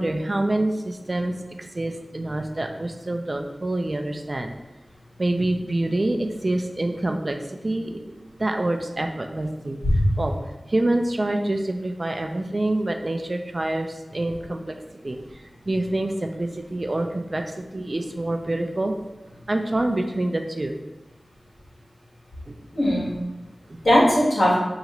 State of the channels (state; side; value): normal; both; correlation 0.97